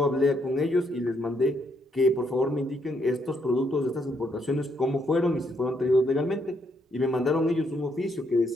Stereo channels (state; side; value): normal; both; correlation 0.74